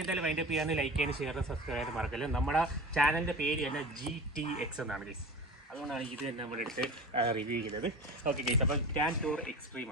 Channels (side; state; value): both; normal; correlation 0.33